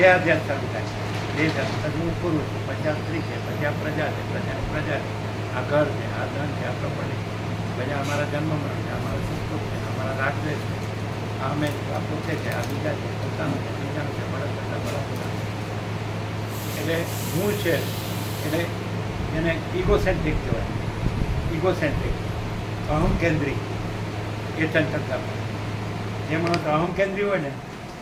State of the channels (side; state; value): both; identical; correlation 1.00